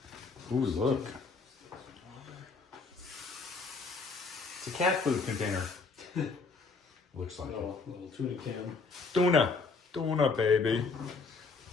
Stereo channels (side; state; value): right; quieter; 4.4 dB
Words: Ooh, look. It's a cat food container. Looks like Little tuna can. Tuna, baby.